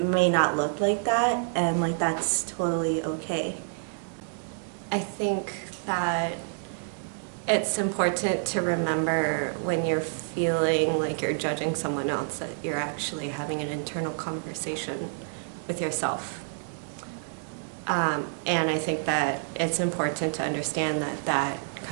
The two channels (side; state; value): left; silent; digital silence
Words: not look like that, and like that's totally okay. I think that it's important to remember when you're feeling like you're judging someone else that you're actually having an internal conversation with yourself. And I think that it's important to understand that that